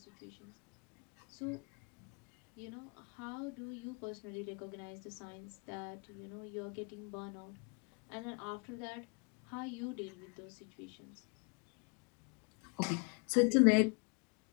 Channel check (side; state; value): right; quieter; 33.9 dB